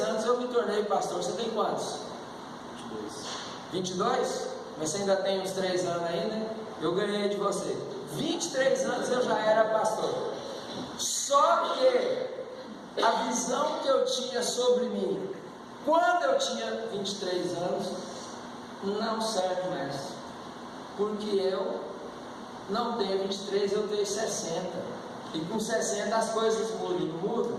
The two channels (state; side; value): identical; both; correlation 1.00